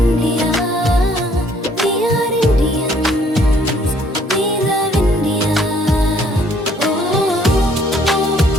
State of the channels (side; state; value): both; normal; correlation 0.63